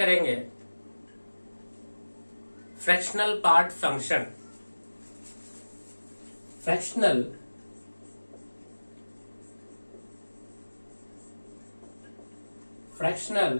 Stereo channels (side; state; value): both; inverted; correlation -1.00